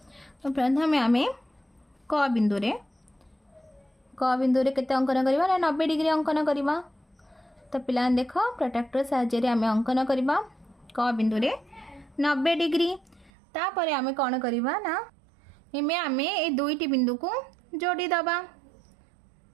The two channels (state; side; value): drops out; left; at 13.3 s